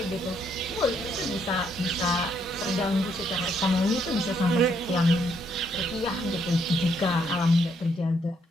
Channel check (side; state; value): both; normal; correlation 0.72